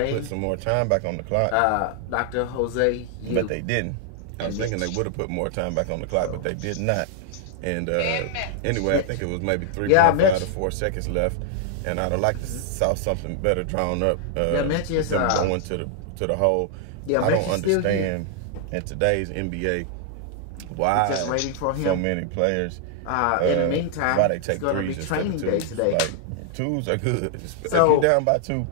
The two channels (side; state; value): both; different; correlation 0.00